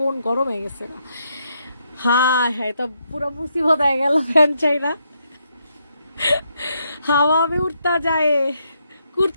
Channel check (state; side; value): inverted; both; correlation -0.78